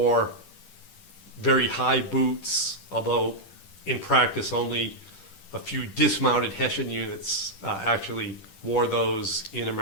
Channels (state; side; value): late; right; 10 ms